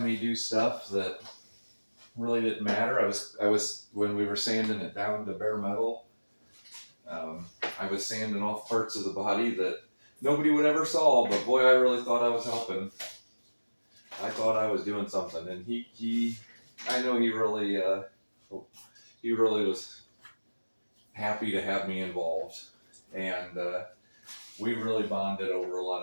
me do stuff that really didn't matter. I was when we were sanding it down to bare metal, I was sanding off parts of the body that nobody would ever saw, but boy, I really thought I was helping. I thought I was doing something, and I know he really was happy to have me involved, and we really bonded over a lot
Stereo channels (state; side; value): inverted; both; correlation -1.00